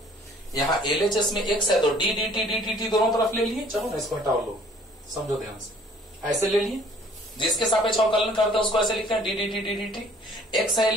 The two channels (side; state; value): both; normal; correlation 0.55